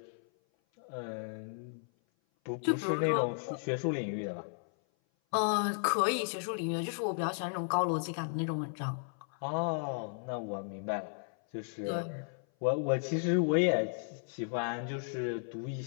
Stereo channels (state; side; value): silent; right; 55 dB below the other